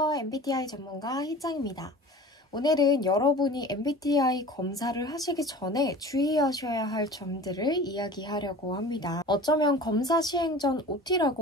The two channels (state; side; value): normal; both; correlation 0.40